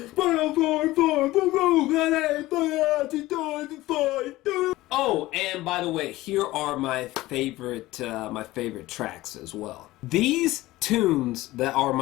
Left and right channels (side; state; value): right; quieter; 17.8 dB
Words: oh, and by the way, here are my favorite tracks as well. These tunes that are